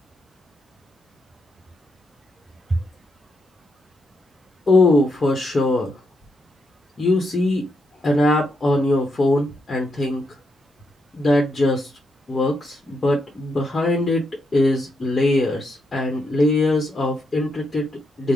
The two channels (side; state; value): both; normal; correlation 0.80